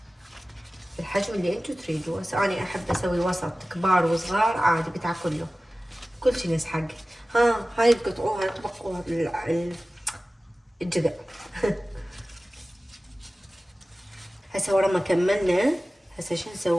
الحجم اللي انتو تريدوه. هسه انا احب اسوي وسط، كبار وصغار عادي بتاكله كل شي يسحق. هاي تقطعوها تبقوها الجذع. هسه ورا ما كملنا هسه شو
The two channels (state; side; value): normal; both; correlation 0.96